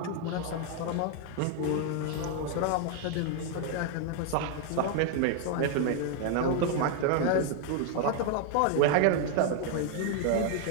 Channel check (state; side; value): different; both; correlation 0.00